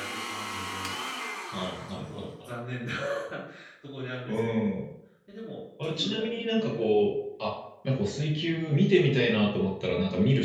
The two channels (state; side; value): identical; both; correlation 1.00